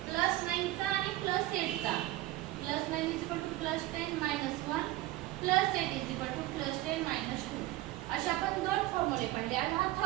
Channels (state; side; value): quieter; left; 16.7 dB